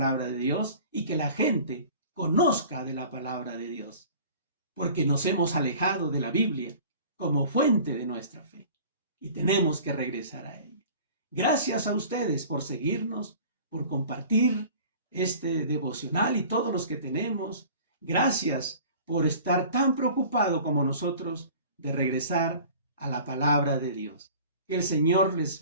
de Dios y que la gente conozca de la palabra de Dios, porque nos hemos alejado de la Biblia como fuente de nuestra fe y tenemos que regresar a ella. Gracias a ustedes por seguirnos, por compartir este devocional y todos los que tenemos. Gracias por estar tan preocupado como nosotros de regresar a la palabra de Dios. Que el Señor les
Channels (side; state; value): both; inverted; correlation -0.44